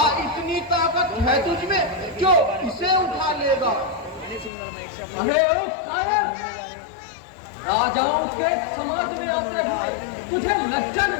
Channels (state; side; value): drops out; right; at 4.5 s